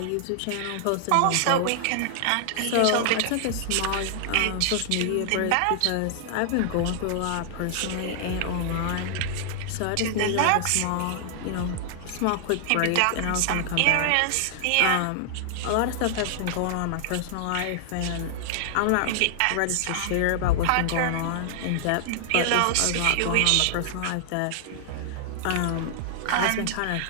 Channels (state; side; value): different; both; correlation -0.01